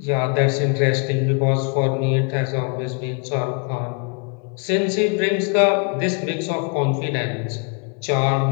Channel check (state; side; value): quieter; right; 37.1 dB